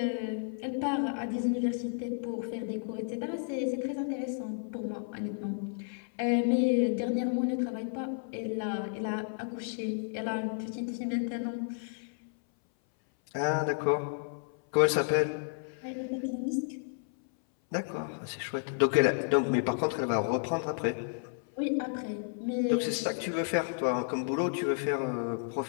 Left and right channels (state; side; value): silent; right; 56 dB below the other